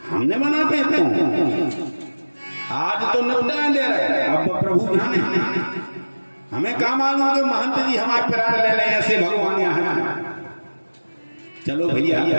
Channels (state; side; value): inverted; both; correlation -1.00